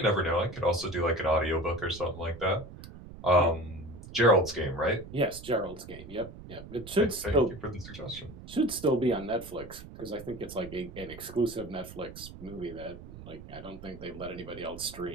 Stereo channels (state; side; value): noise; right; rumble, 14 dB below the sound